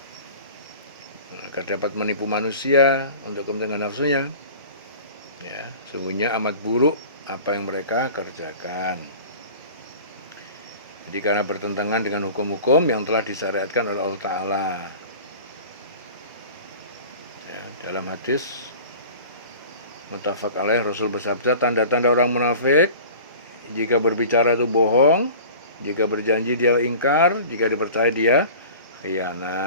agar dapat menipu manusia untuk kepentingan nafsunya. Ya, sungguhnya amat buruk apa yang mereka kerjakan. Jadi karena bertentangan dengan hukum-hukum yang telah disyariatkan oleh Allah Ta'ala. Ya, dalam hadis muttafaq alaih, Rasul bersabda, tanda-tanda orang munafik: jika berbicara itu bohong, jika berjanji dia ingkar, jika dipercaya dia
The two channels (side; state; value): both; inverted; correlation -0.41